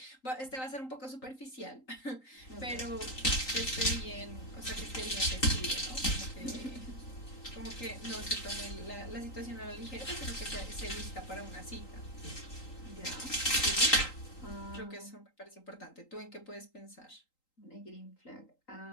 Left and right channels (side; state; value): right; late; 3.8 ms